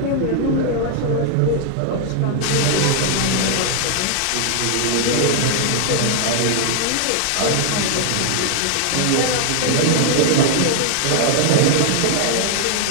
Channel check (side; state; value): both; different; correlation 0.00